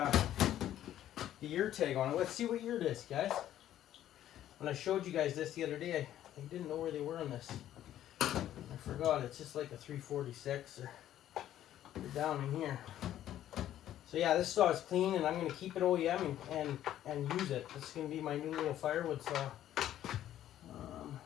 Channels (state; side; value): quieter; right; 12.1 dB